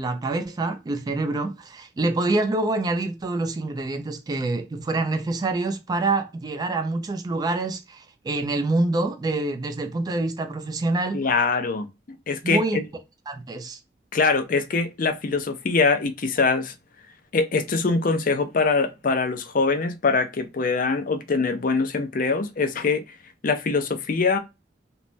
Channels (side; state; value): both; normal; correlation 0.28